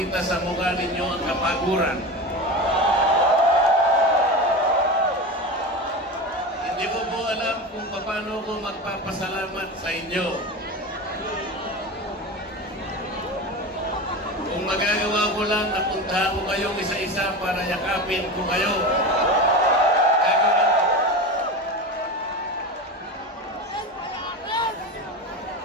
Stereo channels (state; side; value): normal; both; correlation 0.25